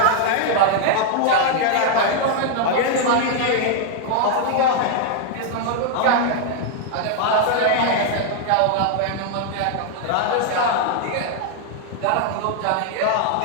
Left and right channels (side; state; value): both; different; correlation 0.00